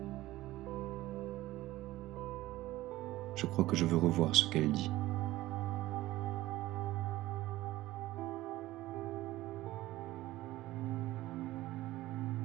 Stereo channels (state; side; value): quieter; left; 16.8 dB